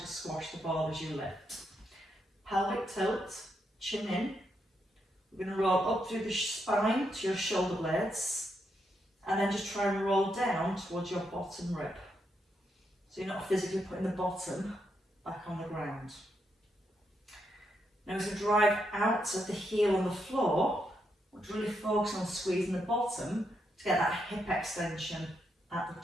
squash the ball as you lift. Pelvic tilt, chin in. We're going to roll up through the spine to your shoulder blades, and then just try and roll down towards your bottom rib. So you're not physically putting the bottom back on the ground. Now as we drive out of the heel on the floor, we're really focusing on squeezing the bottom to get that hip extension at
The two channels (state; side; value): normal; both; correlation 0.80